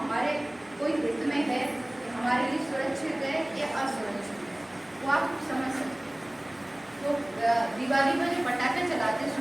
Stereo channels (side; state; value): left; noise; hum, 29 dB below the sound